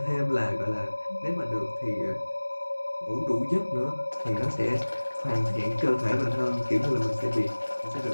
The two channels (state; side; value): inverted; both; correlation -1.00